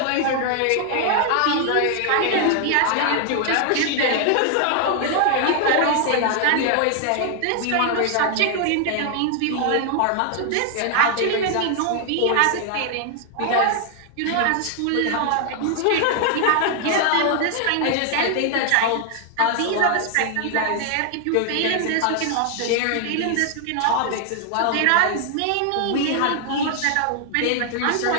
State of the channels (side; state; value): both; different; correlation 0.00